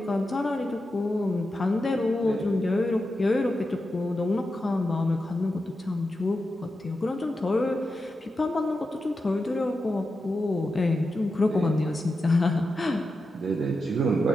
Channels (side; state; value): both; normal; correlation 0.89